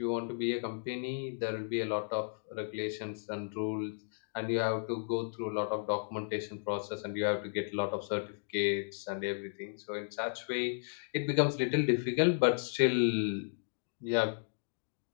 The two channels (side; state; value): right; silent; digital silence